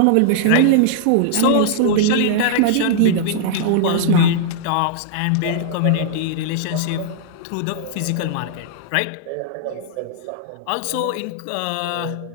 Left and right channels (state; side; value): different; both; correlation -0.01